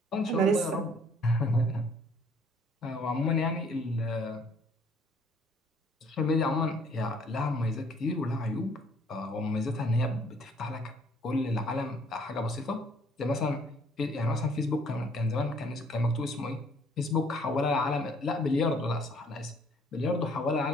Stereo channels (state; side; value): normal; both; correlation 0.60